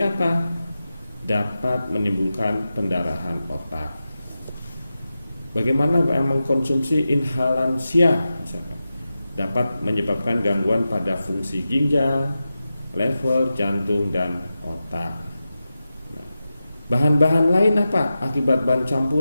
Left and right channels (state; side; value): inverted; both; correlation -0.92